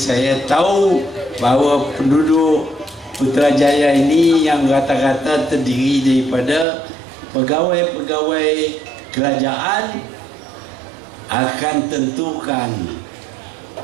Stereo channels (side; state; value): left; drops out; at 6.7 s